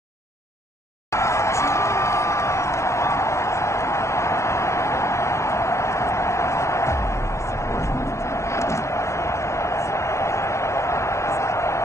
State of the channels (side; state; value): right; late; 0.14 ms